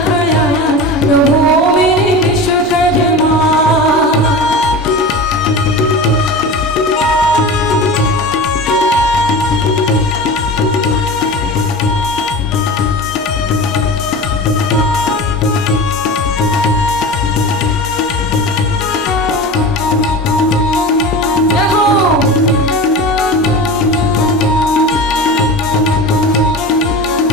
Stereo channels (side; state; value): both; normal; correlation 0.31